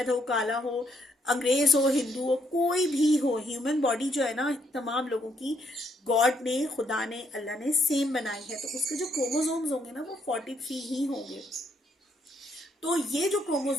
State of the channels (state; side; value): normal; both; correlation 0.73